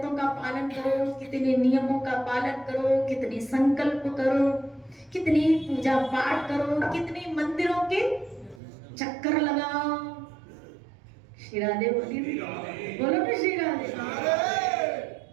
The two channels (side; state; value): left; drops out; at 8.6 s